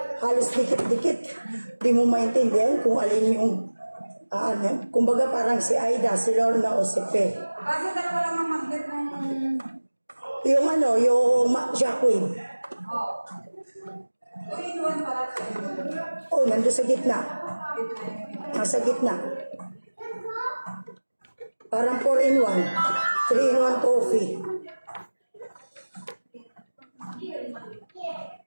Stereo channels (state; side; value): inverted; both; correlation -1.00